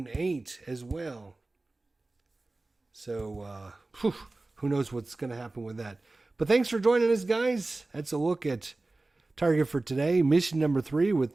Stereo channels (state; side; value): quieter; left; 3.1 dB